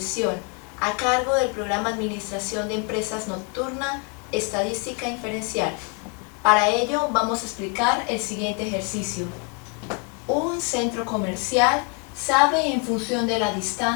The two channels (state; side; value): quieter; right; 36.6 dB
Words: a cargo del programa Administración de Empresas Nocturna, Estadística Inferencial. Para ello vamos a explicar el siguiente ejercicio. Un centro comercial sabe en función de la